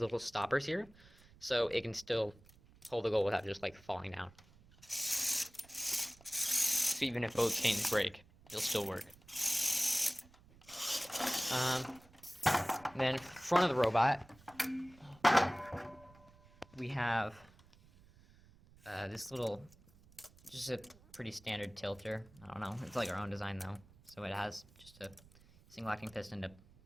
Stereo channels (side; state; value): right; noise; rumble, 25 dB below the sound